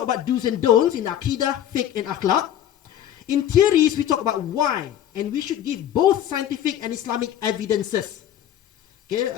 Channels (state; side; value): quieter; right; 11.0 dB